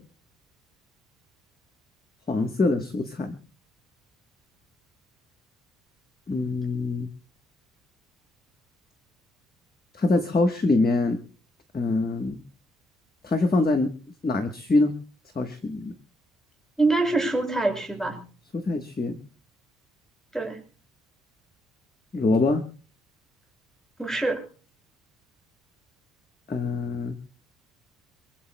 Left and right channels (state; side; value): normal; both; correlation 0.78